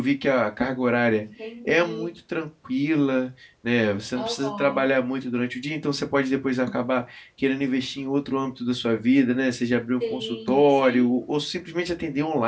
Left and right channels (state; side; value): identical; both; correlation 1.00